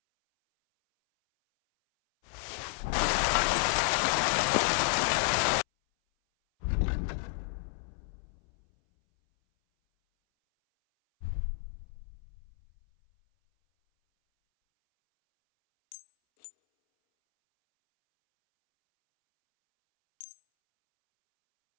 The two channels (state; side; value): silent; right; 57 dB below the other